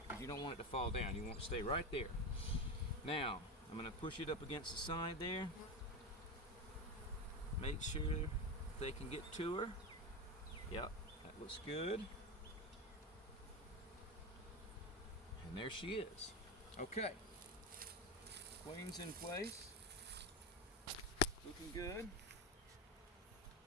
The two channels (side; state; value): both; normal; correlation 0.18